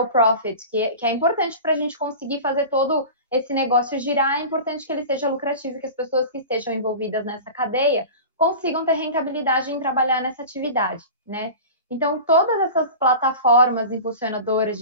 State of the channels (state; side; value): inverted; both; correlation -0.34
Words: profit, que é importante para a gente conseguir fazer todo esse negócio girar, é importante que ele seja lucrativo, que as pessoas que estejam envolvidas nessa cadeia consigam ter rentabilidade em trabalhar nessa atividade, né? Então, todas essas plataformas impulsionadoras